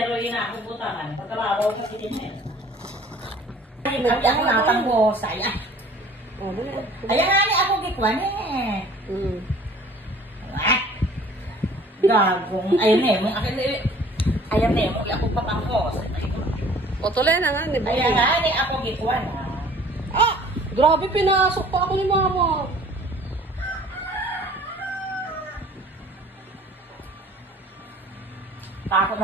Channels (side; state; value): both; normal; correlation 0.51